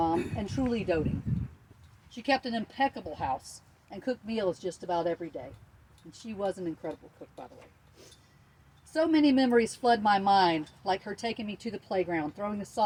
and truly doting. She kept an impeccable house and cooked meals just about every day. And she was an incredible cook, by the way. So many memories flood my mind, like her taking me to the playground, throwing the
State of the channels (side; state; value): both; identical; correlation 1.00